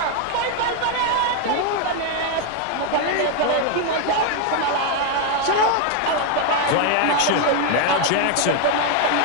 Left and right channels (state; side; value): different; both; correlation 0.01